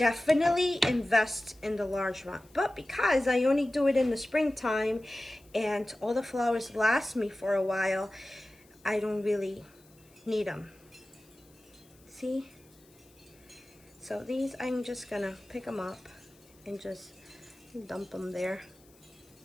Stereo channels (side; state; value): left; noise; hiss, 29 dB below the sound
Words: invest in the large one. But because I only do it in the springtime and all the flowers last me for a while, I don't really need them. See? So these, I'm just gonna pick them up and just dump them there.